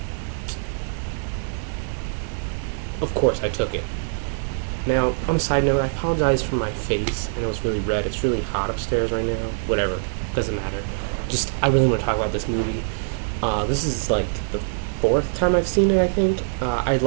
of course I took it. Now, on a side note, I apologize for my face. I know it's really red. It's really hot upstairs right now. Whatever. Doesn't matter. Just, I really want to talk about this movie. This is like the fourth time I've seen it, I think. I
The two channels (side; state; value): left; silent; digital silence